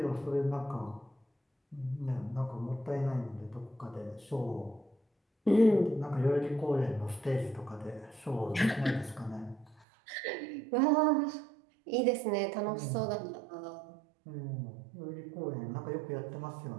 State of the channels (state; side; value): drops out; left; at 9.9 s